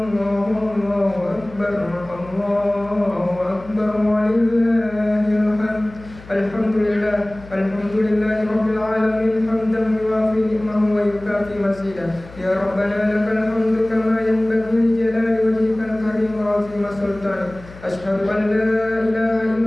Allahu akbar, Allahu akbar walillahil hamd. Alhamdulillah, alhamdulillahi rabbil alamin hamdan yuwafi ni'mahu wa yukafi masidah. Ya Rabbana lakal hamdu kama yanbaghi li jalali wajhikal karim wa 'azimi sultanik. Asyhadu an la ilaha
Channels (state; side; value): noise; left; hum, 19 dB below the sound